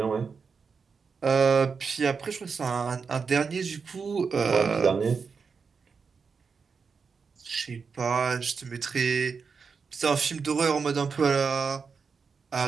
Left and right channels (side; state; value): left; quieter; 5.4 dB